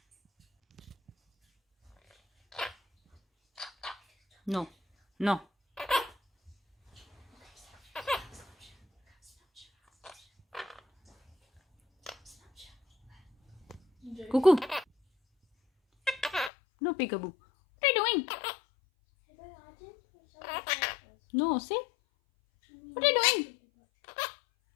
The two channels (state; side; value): drops out; right; at 16.5 s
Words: No. No. Cuckoo. No, peekaboo. What are you doing? No, see? What are you doing?